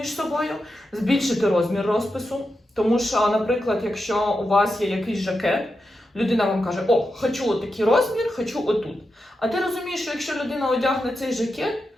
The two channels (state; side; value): normal; both; correlation 0.88